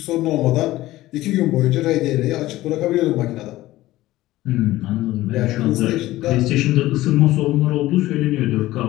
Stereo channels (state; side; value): quieter; right; 16.6 dB